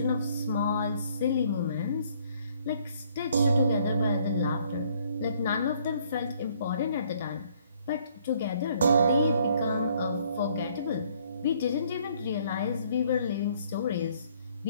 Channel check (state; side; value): inverted; both; correlation -0.64